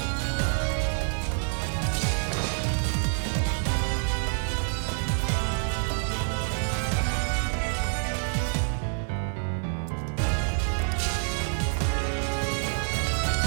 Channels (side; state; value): left; silent; 60 dB below the other